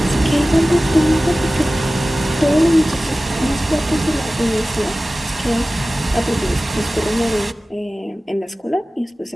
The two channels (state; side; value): normal; both; correlation 0.97